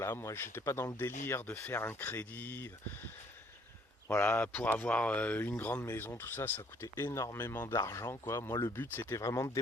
moi j'étais pas dans le délire de faire un crédit. Voilà, pour avoir une grande maison, tout ça, ça coûtait énormément d'argent, quoi. Moi le but c'était vraiment de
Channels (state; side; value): normal; both; correlation 0.62